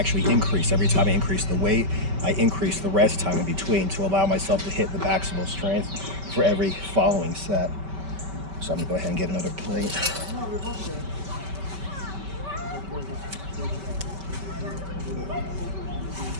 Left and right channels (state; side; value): late; left; 5.2 ms